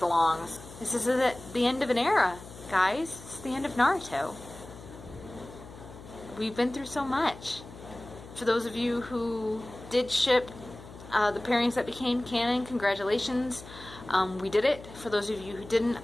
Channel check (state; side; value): noise; left; hum, 16 dB below the sound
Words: long. This is the end of an era, guys. It's the end of Naruto. We've been through so much. For those of you who did ship the pairings that became canon, congratulations. We did it. For those of you who didn't,